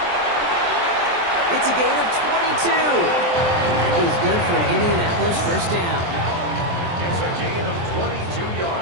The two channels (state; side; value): late; left; 23 ms